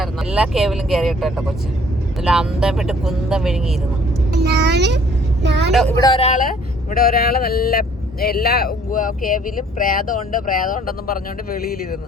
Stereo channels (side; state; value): both; normal; correlation 0.57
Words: എല്ലാ കേവിലും കയറിയിട്ടോ കൊച്ചു. നല്ല അന്തം വിട്ട് കുന്തം വിഴുങ്ങിയിരുന്നു. ഇവിടെ ഒരാള് നല്ല എല്ലാ കേവിലും പ്രേതമുണ്ട് പ്രേതമുണ്ടെന്നും പറഞ്ഞുകൊണ്ട് വെളിയിലിരുന്നു.